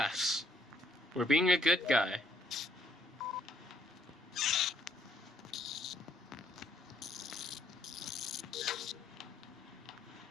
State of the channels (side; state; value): both; normal; correlation 0.68